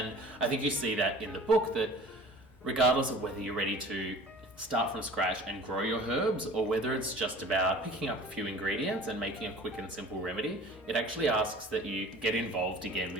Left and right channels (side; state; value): both; normal; correlation 0.44